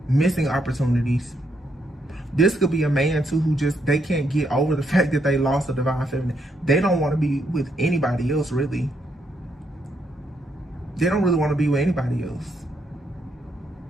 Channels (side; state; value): both; normal; correlation 0.76